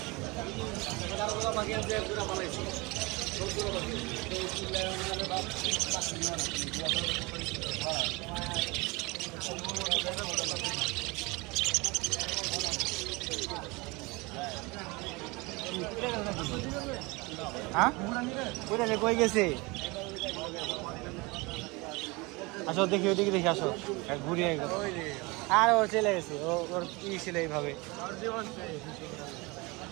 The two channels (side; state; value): left; quieter; 25.3 dB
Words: হ্যাঁ, ওইটা কই গেছে? আসো দেখি, ওইদিকে দেখি, আসো ঘুরিয়ে। আর ও চলে গেছে, ওর ই ছিল এইভাবে,